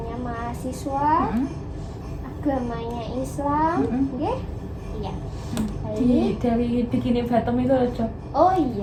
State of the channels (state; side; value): identical; both; correlation 1.00